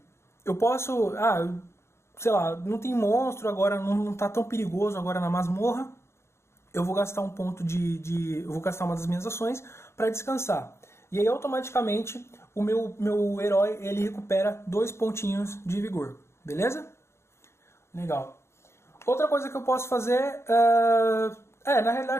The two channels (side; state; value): right; late; 0.13 ms